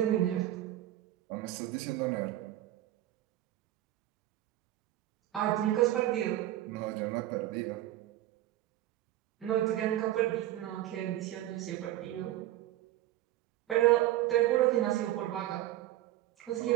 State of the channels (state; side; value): quieter; left; 14.2 dB